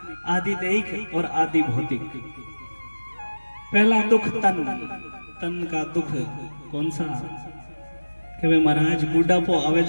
आदि दैहिक और आदि भौतिक। पहला दुख तन का दुख कौन सा? कि वे महाराज बुढ़ापो आवे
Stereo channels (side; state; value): both; inverted; correlation -1.00